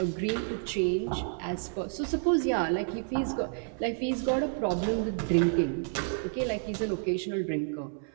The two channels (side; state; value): left; silent; 58 dB below the other